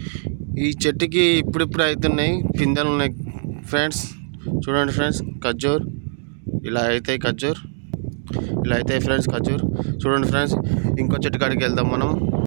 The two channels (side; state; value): left; silent; 64 dB below the other